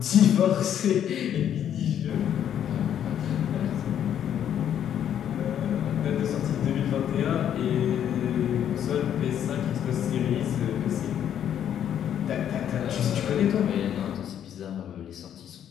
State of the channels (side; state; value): right; quieter; 9.8 dB